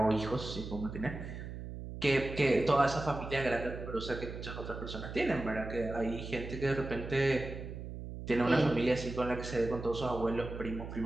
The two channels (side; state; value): right; noise; hum, 9 dB below the sound